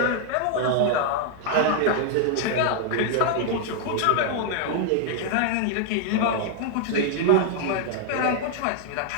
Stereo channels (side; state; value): both; different; correlation 0.00